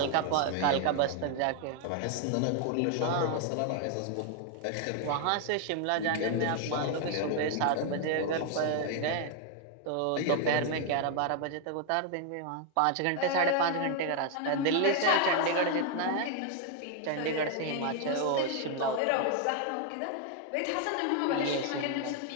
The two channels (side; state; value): both; different; correlation 0.01